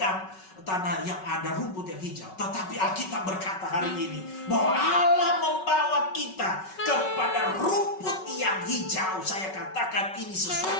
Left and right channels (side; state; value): right; late; 5.3 ms